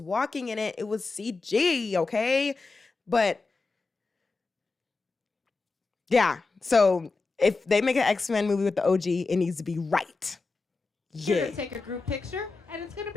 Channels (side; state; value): right; quieter; 3.9 dB